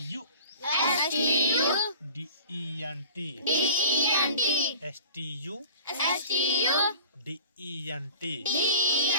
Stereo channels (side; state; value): both; inverted; correlation -0.43